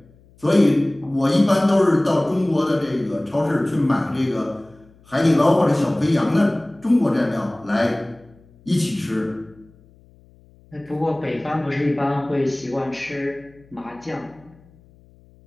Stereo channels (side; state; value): left; noise; hum, 28 dB below the sound